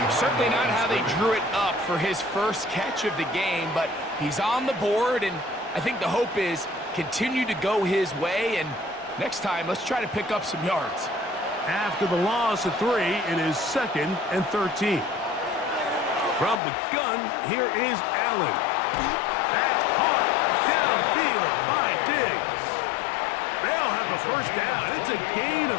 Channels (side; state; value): right; drops out; at 16.6 s